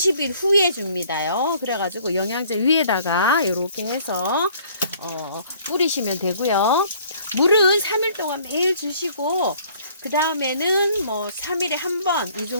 후에 줍니다요. 그래가지고 영양제 위에다가 이렇게 해서 뿌리시면 되고요. 물은 3일 동안 매일 주시고 그 다음에는 뭐 3일에 한 번 이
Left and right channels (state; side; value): inverted; both; correlation -0.57